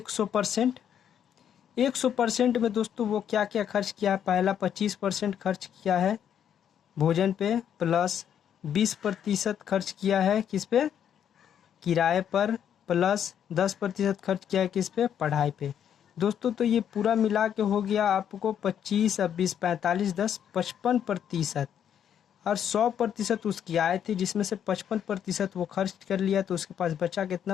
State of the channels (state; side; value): quieter; right; 9.1 dB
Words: 100% में दोस्तों वो क्या क्या खर्च किया है, पहला 25% खर्च किया है भोजन पे, प्लस 20% खर्च किया है किस पे, किराए पर, प्लस 10% खर्च किया है किस पे, पढ़ाई पे। दोस्तों तो ये पूरा मिला के हो गया आपको 25 अब 20 45 10 55%। और 100% उसकी आय थी, जिसमें से 55% वो खर्च कर लिया, तो उसके पास बचा